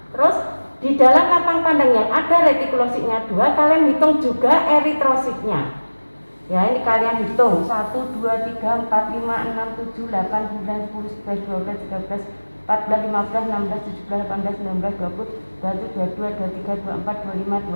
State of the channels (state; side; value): inverted; both; correlation -1.00